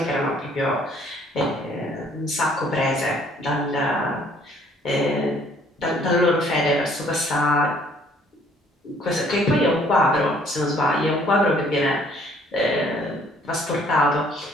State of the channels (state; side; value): normal; both; correlation 0.60